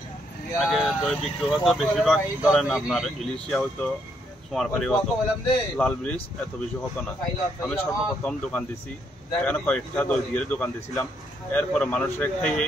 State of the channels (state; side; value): normal; both; correlation 0.74